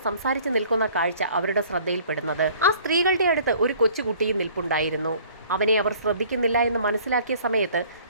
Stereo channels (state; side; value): inverted; both; correlation -0.53